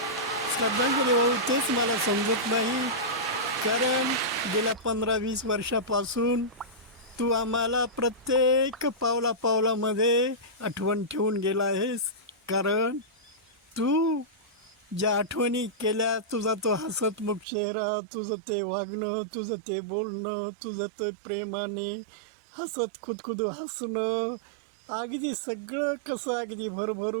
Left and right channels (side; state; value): left; drops out; at 17.4 s